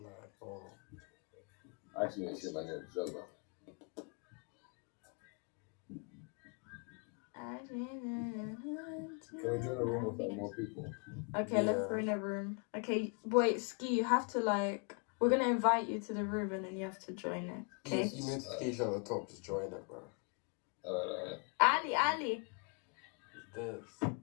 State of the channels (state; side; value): quieter; right; 36.8 dB